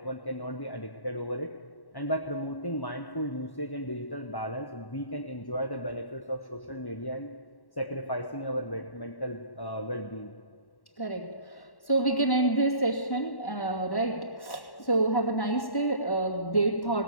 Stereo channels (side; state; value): right; late; 1.1 ms